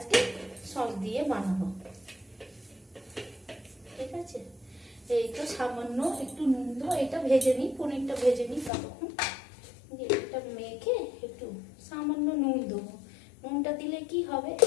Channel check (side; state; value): right; drops out; at 8.7 s